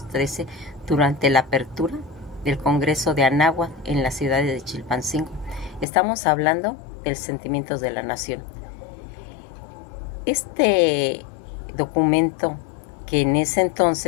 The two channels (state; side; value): drops out; right; at 5.9 s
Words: durante la apertura del Congreso de Anáhuac en la ciudad de Chilpancingo. Estamos hablando del Sentimientos de la Nación. Este documento, que en ese